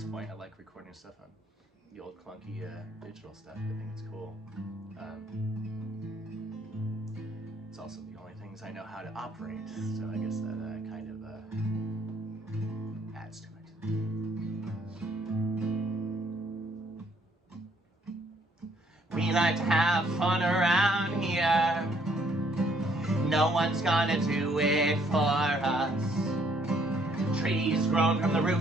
point, I like recording stuff on the old clunky digital stuff. I think it's cool. It's also the only things I know how to operate, so I guess that kind of adds to it. We like to have fun around here. No one's gonna do it for us. Trees grown from the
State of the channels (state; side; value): normal; both; correlation 0.66